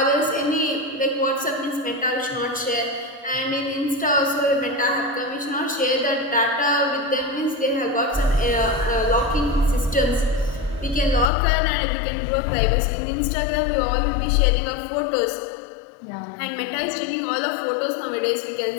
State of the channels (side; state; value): right; drops out; at 11.3 s